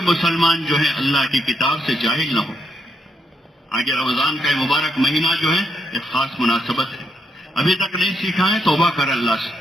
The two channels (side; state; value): both; normal; correlation 0.79